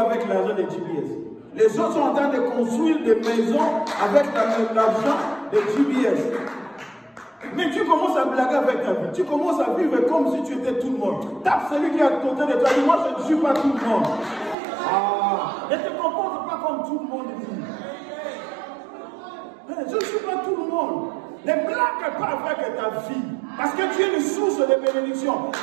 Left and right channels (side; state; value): left; drops out; at 14.6 s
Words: l'argent de GBS. Les autres sont en train de construire des maisons avec l'argent de GBS. Mais tu commences à blaguer avec ta vie. Tu commences à vivre comme si tu étais tout le monde. Tape celui qui est à côté de toi. Dis, moi, je ne suis pas tout le monde. Ne te comporte pas comme tout le monde dit. Je ne suis pas tout le monde. Ne blague pas avec ta vie. Parce que tu es une source de bénédiction.